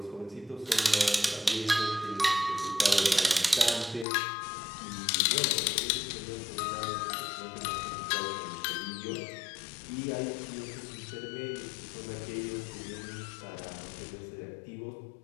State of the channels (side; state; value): right; drops out; at 4.0 s